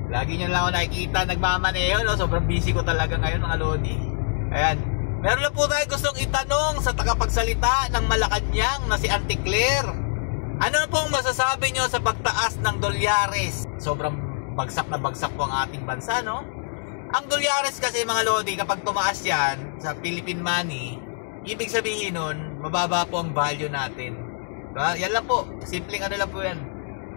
Lagi nyo lang ako nakikita nagmamaneho, no? Sobrang busy ko talaga ngayon, mga lodi. Ayan, meron lang po tayo gustong itanong sa tagapagsalita ng Malacanang na si Auntie Claire. Ano na pong masasabi nyo sa pagtaas ng dolyares? Sobrang bagsak na bagsak po ang ating bansa, no? Ang dolyares kasi, mga lodi, kapag tumaas yan sa Philippine money, ibig sabihin nun, mababa po ang value natin. Diba? Yan lang po. Simpleng ano lang po yan.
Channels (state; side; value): silent; right; digital silence